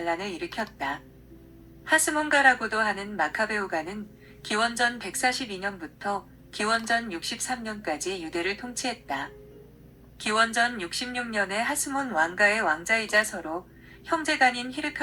일으켰다. 하스몬가라고도 하는 마카베오가는 기원전 142년부터 기원전 63년까지 유대를 통치했다. 기원전 66년에 하스몬 왕가의 왕자이자 서로 형제간인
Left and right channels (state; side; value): identical; both; correlation 1.00